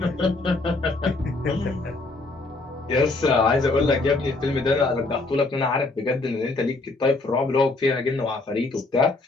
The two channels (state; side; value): quieter; right; 3.3 dB